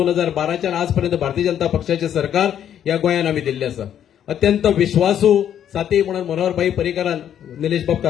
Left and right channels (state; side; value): quieter; right; 9.9 dB